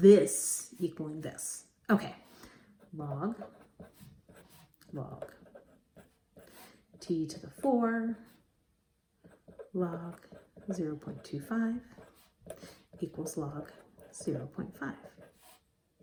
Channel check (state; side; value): identical; both; correlation 1.00